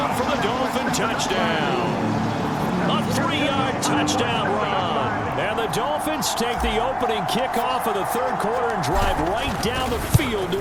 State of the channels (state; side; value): identical; both; correlation 1.00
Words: for the Dolphin touchdown. A 3-yard touchdown run. And the Dolphins take the opening kickoff of the 3rd quarter and drive right down the field